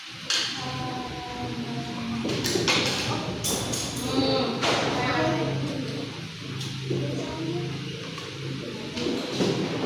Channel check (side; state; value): both; identical; correlation 1.00